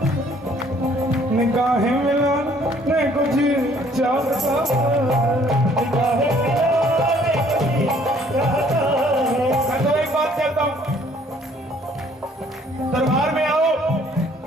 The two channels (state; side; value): normal; both; correlation 0.60